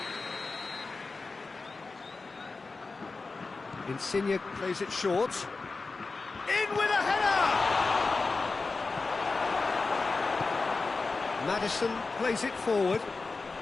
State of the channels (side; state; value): right; quieter; 3.9 dB